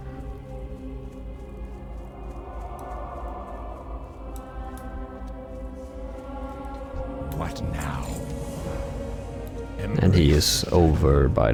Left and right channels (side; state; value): both; identical; correlation 1.00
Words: What now? And he is over by